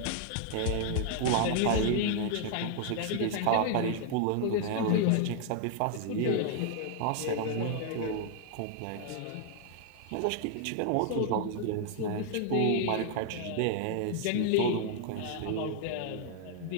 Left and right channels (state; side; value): different; both; correlation 0.00